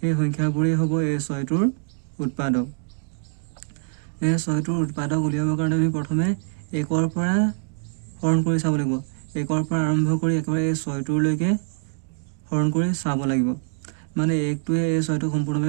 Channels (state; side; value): silent; left; 62 dB below the other